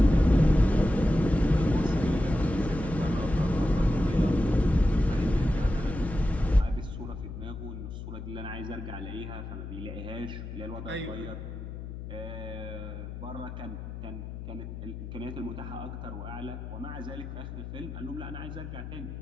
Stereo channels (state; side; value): noise; left; hum, 9 dB below the sound